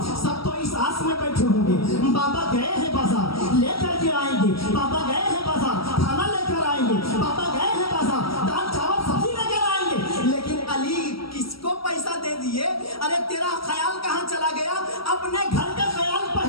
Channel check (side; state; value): right; late; 0.75 ms